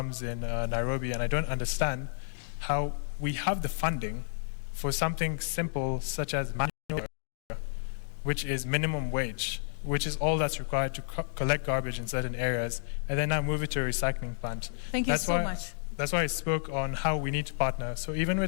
in Nairobi, and I don't understand how we have the funding for something simple such as manual labor, which is minimum wage, which is all that's required to collect garbage in certain areas, and then now move it to a recycling plant. Thank you so much. That's why I spoke on how we need to partner. So even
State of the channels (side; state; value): right; silent; digital silence